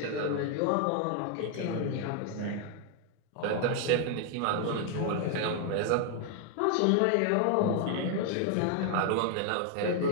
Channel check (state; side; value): different; both; correlation 0.00